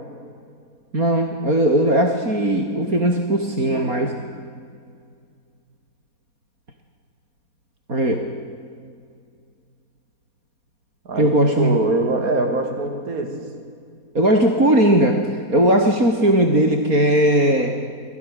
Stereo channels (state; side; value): late; left; 4.2 ms